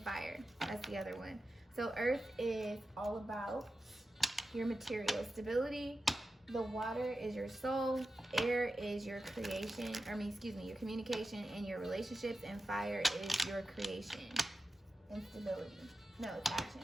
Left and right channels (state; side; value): normal; both; correlation 0.92